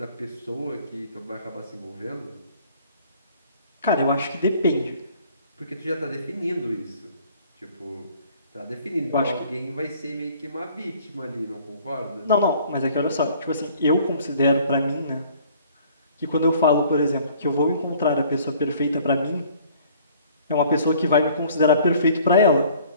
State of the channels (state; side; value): inverted; both; correlation -0.55